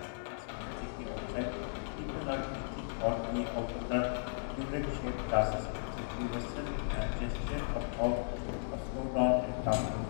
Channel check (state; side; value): silent; right; digital silence